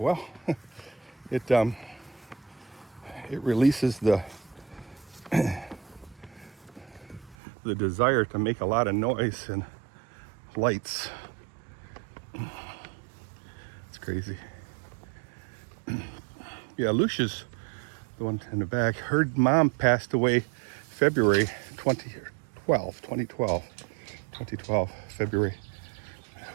it releases the desire to make a lot of noise and lights. It's crazy. Yeah, Lucia's the one in the back. Her mom passed away February 2012, February. It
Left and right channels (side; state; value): left; drops out; at 7.4 s